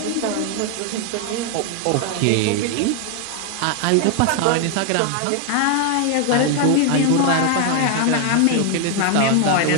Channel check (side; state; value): both; different; correlation 0.00